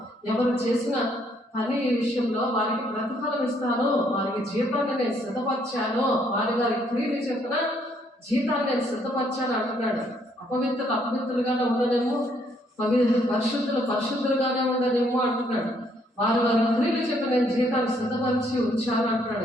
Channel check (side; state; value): both; normal; correlation 0.69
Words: ఎవరు చేసిన పని విషయంలో వారికి ప్రతిఫలం ఇస్తాను, వారికి జీతాన్ని నేను సిద్ధపరిచాను, వారి క్రియలు చెప్పిన జీతాన్ని నేను సిద్ధపరిచాను అంటున్నాడు. అపవిత్రులు అపవిత్రులుగానే ఉండనేమో, పరిశుద్ధులుగానే ఉండనేమో అంటున్నాడు. వారి క్రియలు చెప్పి నేను జీతాన్ని సిద్ధపరిచి ఉంచాను